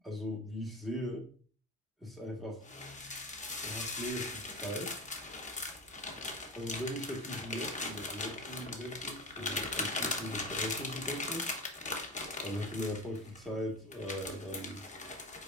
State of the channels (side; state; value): both; normal; correlation 0.28